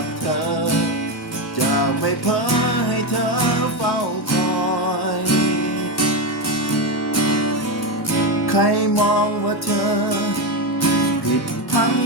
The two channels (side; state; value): both; normal; correlation 0.12